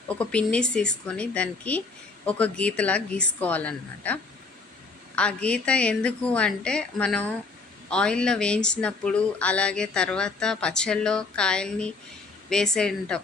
ఒక పిన్నీస్ తీసుకొని దానికి ఒక గీతలా గీసుకోవాలన్నమాట. ఆ గీత ఎందుకు అంటే మనం ఆయిల్లో వేయించినప్పుడు అలాగే తర్వాత పచ్చళ్ళలో కాయల్ని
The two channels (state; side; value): quieter; right; 3.9 dB